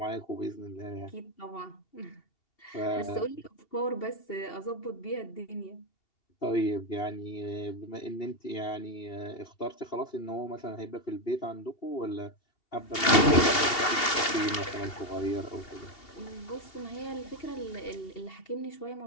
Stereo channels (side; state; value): right; late; 2.7 ms